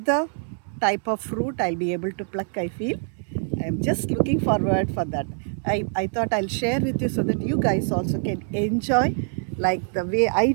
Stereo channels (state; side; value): silent; left; digital silence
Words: type of fruit I'll be able to pluck, I feel. I'm just looking forward for that. I thought I'll share with you so that you guys also can enjoy like the way I